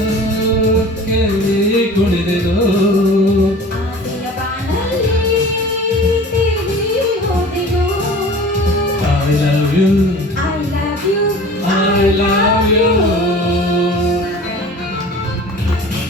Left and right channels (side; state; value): both; normal; correlation 0.41